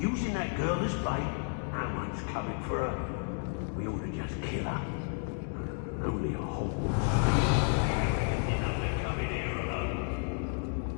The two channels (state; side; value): silent; right; 56 dB below the other